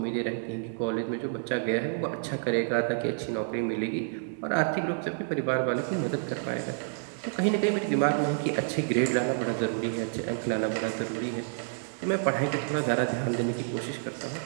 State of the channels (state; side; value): silent; left; digital silence